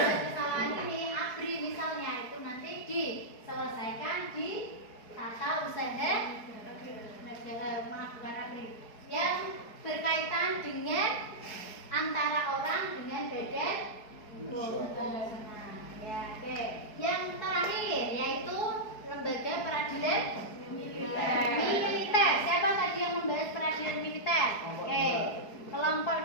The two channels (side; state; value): right; late; 4.7 ms